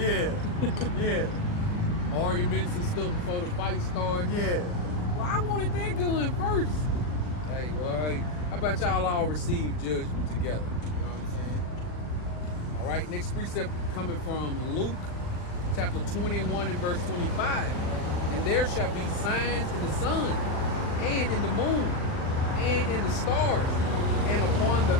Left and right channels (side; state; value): right; late; 39 ms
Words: arguments and stuff before the fight started. yeah. Well, I wanted that gun first. Hey, well, hey, how about y'all all receive judgment together? You know what I'm saying? All right, next precept coming from Luke chapter 21 and verse 25. And there shall be signs in the sun and in the moon and in the stars and upon the